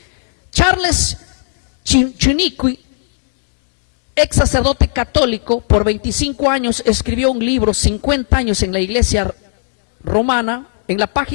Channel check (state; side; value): silent; right; digital silence